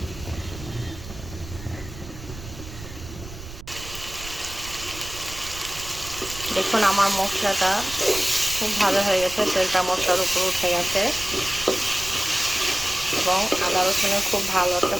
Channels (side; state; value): right; noise; rumble, 13 dB below the sound